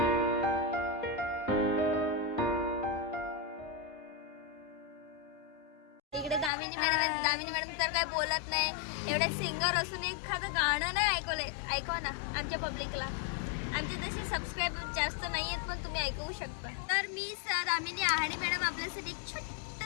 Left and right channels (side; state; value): right; drops out; at 6.5 s